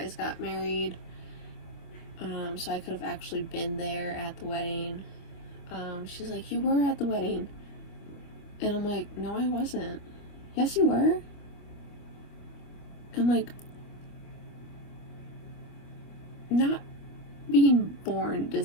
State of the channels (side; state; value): right; late; 25 ms